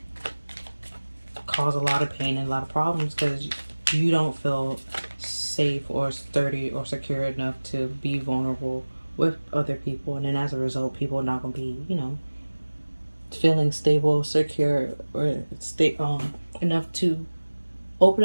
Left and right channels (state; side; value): inverted; both; correlation -1.00